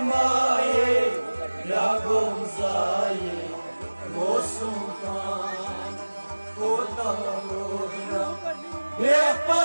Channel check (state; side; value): inverted; both; correlation -1.00